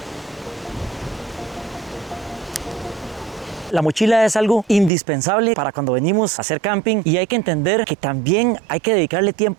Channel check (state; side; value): drops out; left; at 4.9 s